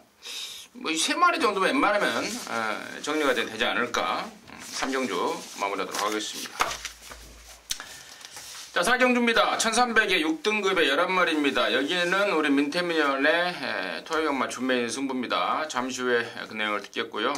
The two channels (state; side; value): identical; both; correlation 1.00